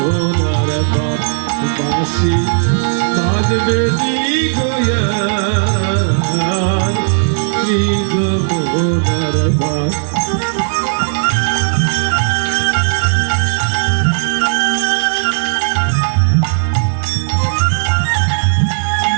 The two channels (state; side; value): silent; left; digital silence